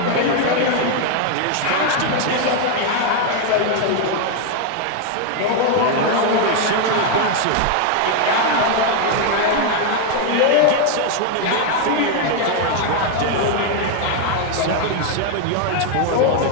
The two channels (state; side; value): different; both; correlation 0.01